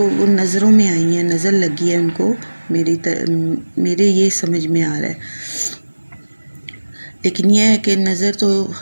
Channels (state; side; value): inverted; both; correlation -1.00